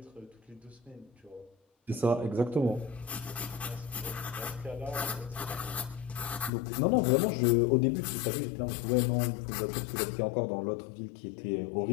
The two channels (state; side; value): drops out; right; at 6.5 s